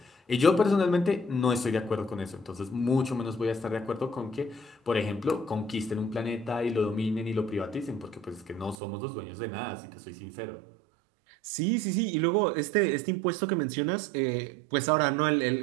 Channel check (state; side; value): drops out; left; at 8.8 s